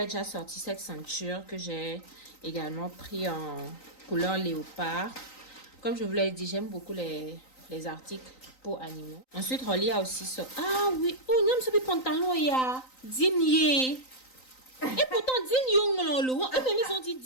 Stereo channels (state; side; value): late; right; 3.9 ms